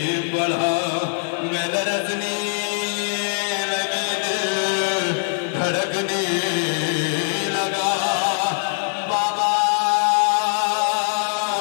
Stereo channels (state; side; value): silent; right; digital silence